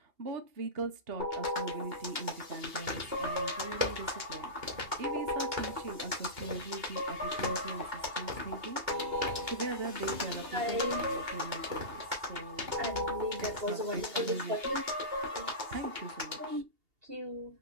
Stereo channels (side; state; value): left; late; 2.8 ms